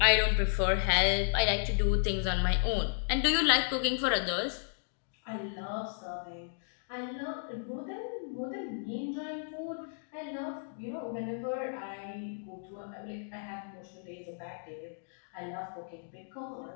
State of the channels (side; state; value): right; silent; digital silence